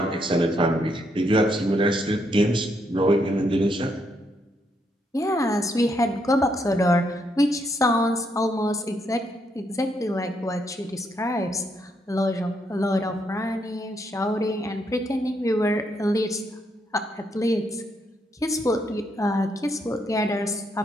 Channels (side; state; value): both; normal; correlation 0.76